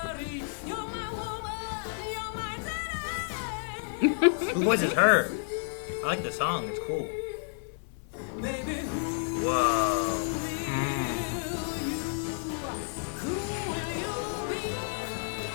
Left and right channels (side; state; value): right; silent; 57 dB below the other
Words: Who voices her? I like the song, it's cool. Whoa.